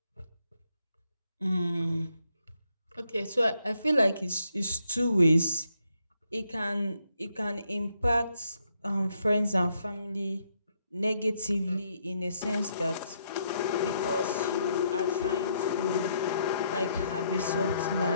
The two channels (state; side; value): inverted; both; correlation -0.75